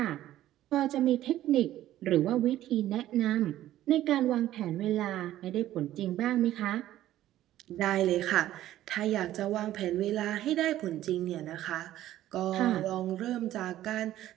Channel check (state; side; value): quieter; left; 13.5 dB